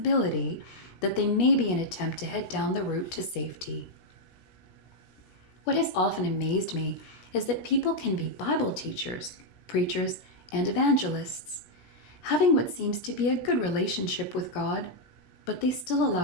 that they may be an attempt to head down the route to safety. What has often amazed me is that people can be Bible teachers, preachers, and evangelists, having what seems to be a good relationship with God, but they still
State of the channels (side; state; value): right; late; 17 ms